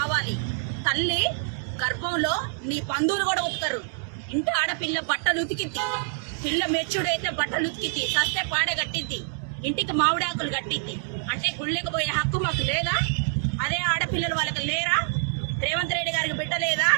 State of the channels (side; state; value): left; silent; digital silence